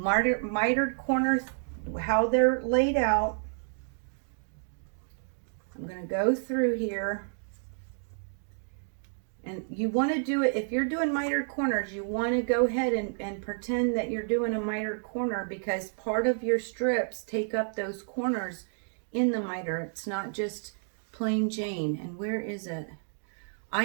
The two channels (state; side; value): silent; left; digital silence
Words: corners, how they're laid out. I'm going to go through here. And you want to do it, if you're doing mitered corners, you want to go ahead and pretend that you're doing a mitered corner, because part of your strips take up those corners in the miter. It's not just plain Jane. And where is it? I